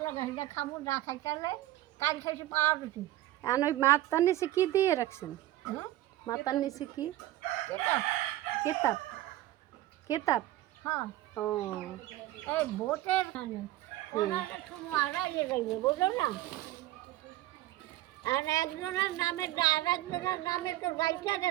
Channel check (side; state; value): left; quieter; 15.5 dB